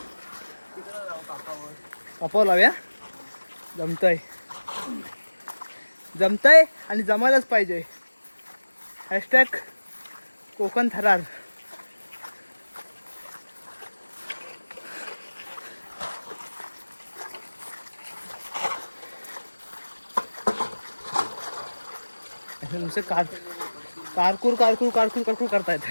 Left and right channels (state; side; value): inverted; both; correlation -1.00